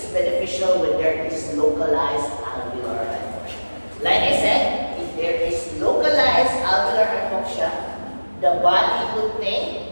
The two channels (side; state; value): both; inverted; correlation -1.00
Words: beneficial when there is localized alveolar hypoxia. Like I said, if there is localized alveolar hypoxia, the body would